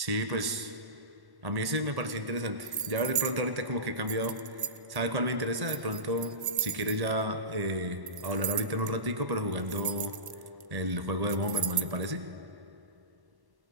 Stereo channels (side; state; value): left; late; 1.1 ms